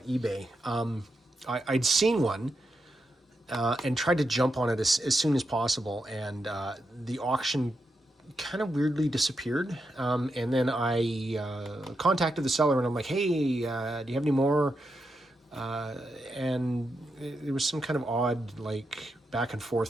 eBay. I'd seen one and tried to jump on it as soon as possible, and the auction kind of weirdly disappeared. And then I contacted the seller, and I'm like, "Hey, do you have any more?" And there was some kind of odd like back and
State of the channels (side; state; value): both; normal; correlation 0.85